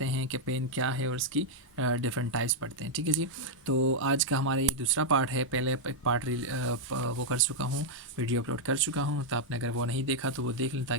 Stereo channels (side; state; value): both; normal; correlation -0.03